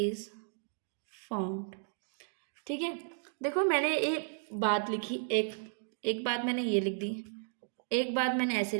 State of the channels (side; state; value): left; silent; digital silence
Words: formed, ठीक है। देखो मैंने एक बात लिखी, एक बात मैंने ये लिख दी, एक बात मैंने ऐसे